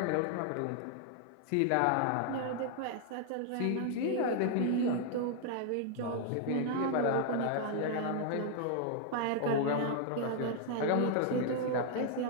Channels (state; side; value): different; both; correlation 0.00